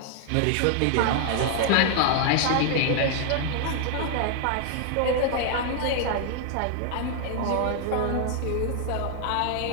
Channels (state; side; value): different; both; correlation 0.00